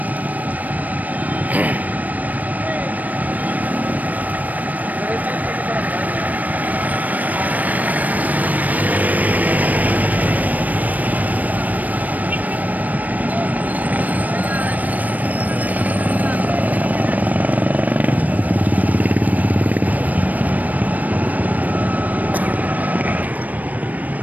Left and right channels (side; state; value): left; late; 0.077 ms